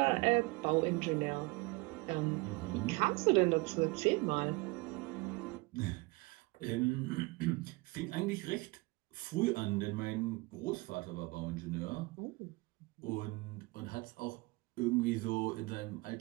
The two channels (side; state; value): left; quieter; 24.6 dB